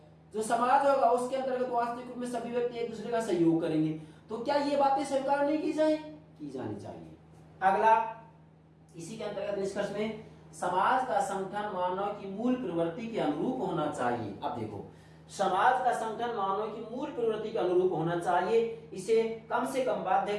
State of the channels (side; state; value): both; identical; correlation 1.00